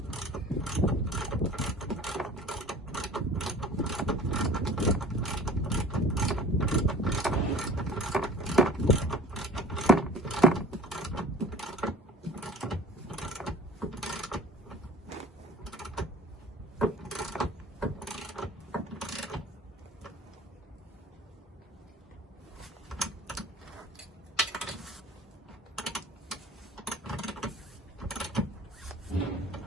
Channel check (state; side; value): normal; both; correlation 0.45